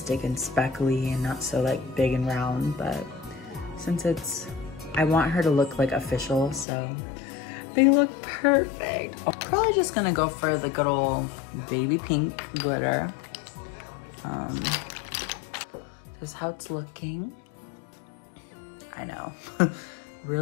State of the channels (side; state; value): right; drops out; at 6.7 s